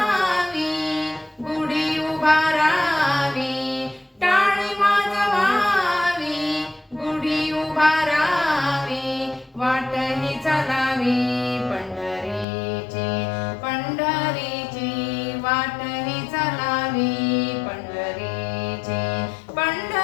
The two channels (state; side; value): drops out; right; at 12.5 s